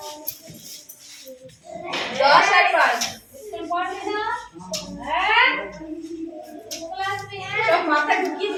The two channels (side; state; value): both; identical; correlation 1.00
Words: 10 আর 5 সব মাথা ঢুকিয়ে